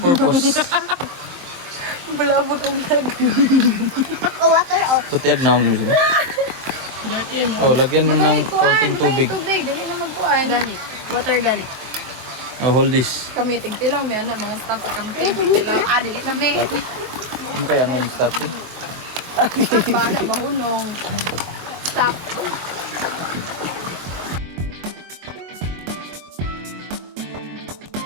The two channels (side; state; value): left; late; 23 ms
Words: Bulabog ang lag. Oh, water. Oh. Kutiag na ako nila. Oh, lagyan mo ng konting tubig. Tubig, dali na magkuhan. Ganit. Water ganit. Oh, hold this. Kami, tigtilang may anak, mga staff at kami tigtilang. Dali kami. Ano kaya ang name stop eh? Bahala, mahunong. Stop.